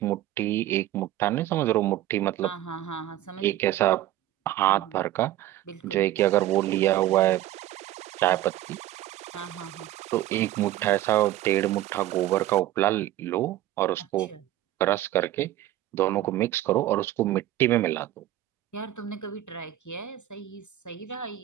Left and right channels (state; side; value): quieter; left; 14.1 dB